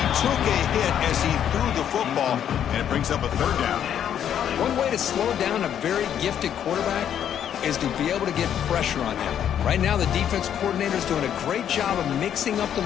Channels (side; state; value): right; quieter; 9.5 dB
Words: took a hit as he threw the football, and it brings up a third down. One way to slow down a very gifted quarterback is to be able to get pressure on him. Right now, the defense coordinator is doing a great job of mixing up the